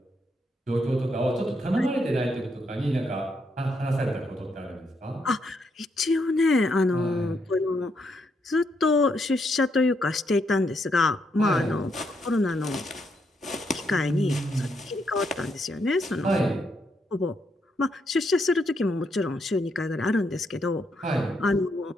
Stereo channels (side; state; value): both; normal; correlation 0.77